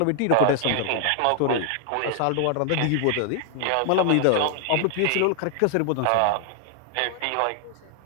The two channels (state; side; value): different; both; correlation 0.00